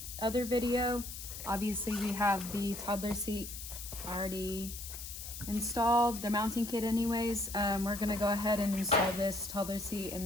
other video. Obviously we have the toddler seat already installed, the mounting kit anyways. We're gonna go ahead and install this toddler seat in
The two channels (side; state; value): left; noise; hiss, 9 dB below the sound